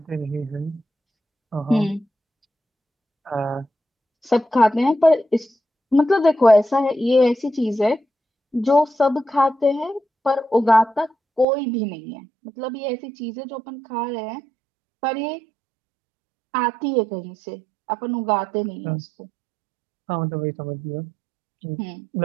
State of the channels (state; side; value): drops out; left; at 11.5 s